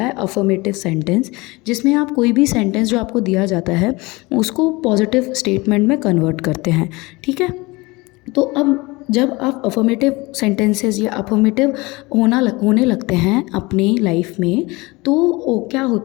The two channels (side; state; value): right; quieter; 23.4 dB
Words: है अफर्मेटिव सेंटेंस, जिसमें आप कोई भी सेंटेंस जो आपको दिया जाता है उसको पॉजिटिव स्टेटमेंट में कन्वर्ट करते हैं। ठीक है, तो अब जब आप अफर्मेटिव सेंटेंसेस या अफर्मेटिव होने लगते हैं अपनी लाइफ में, तो क्या